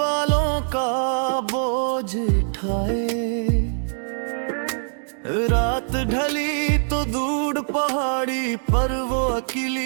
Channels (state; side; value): silent; left; digital silence